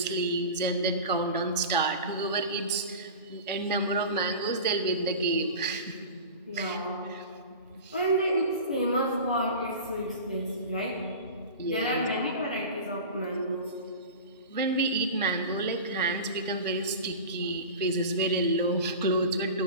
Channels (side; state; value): both; inverted; correlation -0.32